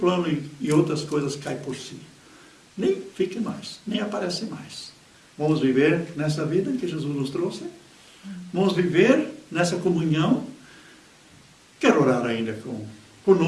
e outras coisas caem por si. Nem fica mais, nem aparece mais. Vamos viver nessa vida que Jesus nos trouxe. Vamos viver nessa comunhão. Quero orar ainda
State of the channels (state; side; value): identical; both; correlation 1.00